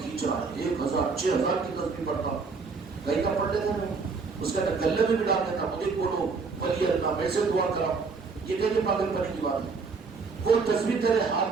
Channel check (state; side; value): quieter; left; 4.7 dB